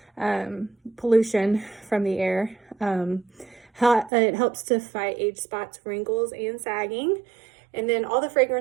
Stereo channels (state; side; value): drops out; left; at 4.1 s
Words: pollution from the air. It helps to fight age spots, wrinkles, and sagging. And then all the